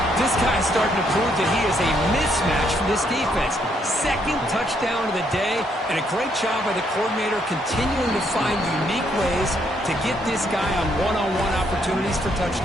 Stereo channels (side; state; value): both; normal; correlation 0.72